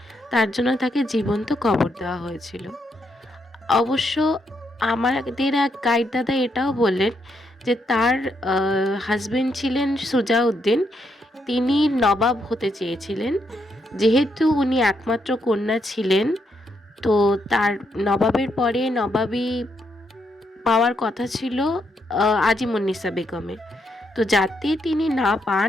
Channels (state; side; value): normal; both; correlation 0.78